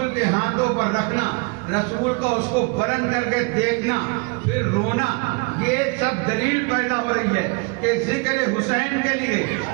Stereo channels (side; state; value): left; quieter; 30.0 dB